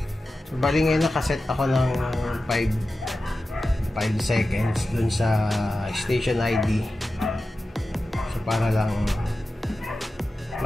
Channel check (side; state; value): both; normal; correlation 0.93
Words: So bali ngayon nakaset ako ng 5 seconds dun sa station ID. So para lang